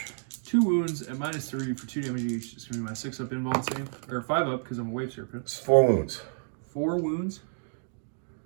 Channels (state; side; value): silent; left; digital silence